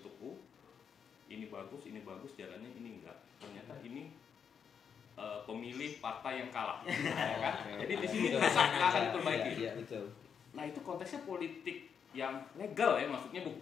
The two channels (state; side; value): quieter; right; 7.1 dB